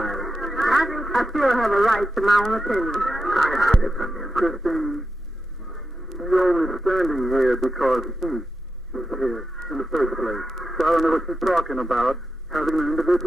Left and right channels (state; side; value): normal; both; correlation 0.88